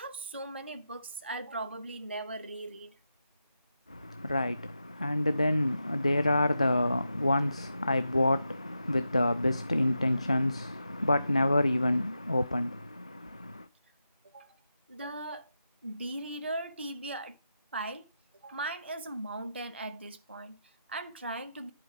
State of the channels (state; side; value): inverted; both; correlation -0.88